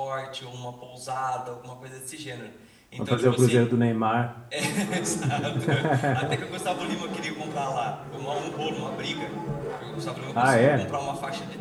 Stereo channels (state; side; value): identical; both; correlation 1.00